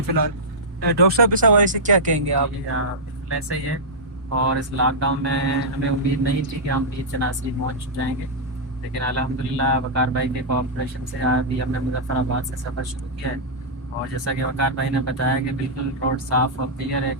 फ़िलहाल। डॉक्टर साहब इस हवाले से क्या कहेंगे आप? जी हाँ, बिल्कुल ऐसा ही है। और इस लॉकडाउन में हमें उम्मीद नहीं थी कि हम पीर चनासी पहुँच जाएंगे, लेकिन अल्हम्दुलिल्लाह वकार भाई के कोऑपरेशन से अभी हमने मुजफ्फराबाद से सफ़र शुरू किया है। और जैसा कि वकार भाई ने बताया कि बिल्कुल रोड साफ़ और क्लियर है,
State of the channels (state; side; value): normal; both; correlation -0.11